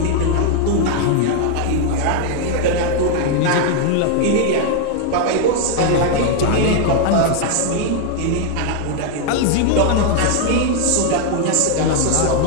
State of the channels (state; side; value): different; both; correlation 0.00